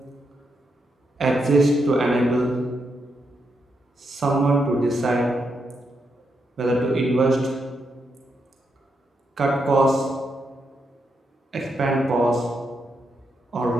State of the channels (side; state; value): both; normal; correlation 0.82